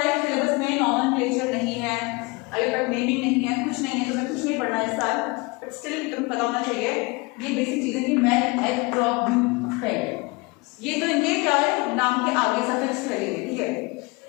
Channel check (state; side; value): quieter; right; 26.1 dB